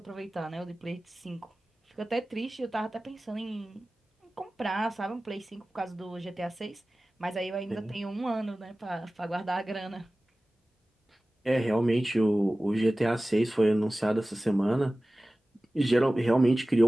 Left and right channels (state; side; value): normal; both; correlation 0.97